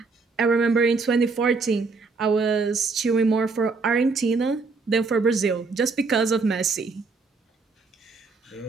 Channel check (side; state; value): left; quieter; 4.2 dB